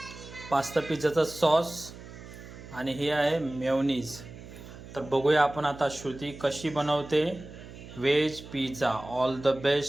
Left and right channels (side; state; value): right; noise; hum, 15 dB below the sound